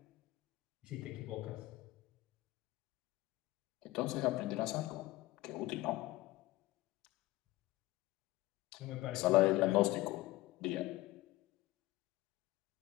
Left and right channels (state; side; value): quieter; right; 18.5 dB